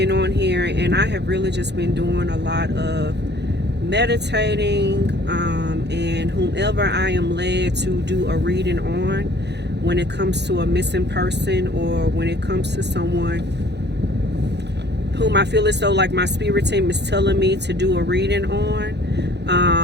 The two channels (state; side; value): late; left; 0.50 ms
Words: on here, and I have really just been doing a lot of meditating, and whomever I am led to do a reading on when it comes to a missing person, or when it comes to someone whom I feel as though like my spirit team is telling me to do a reading